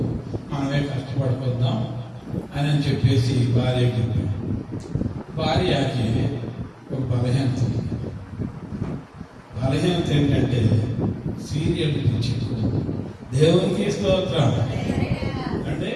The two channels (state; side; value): identical; both; correlation 1.00